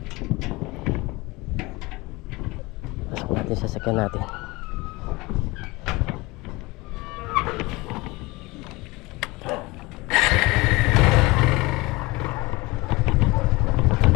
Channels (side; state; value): right; quieter; 22.8 dB